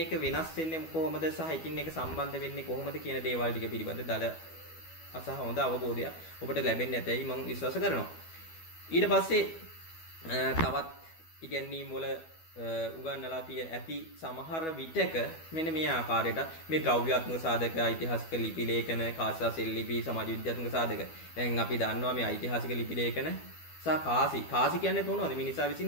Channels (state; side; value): late; right; 12 ms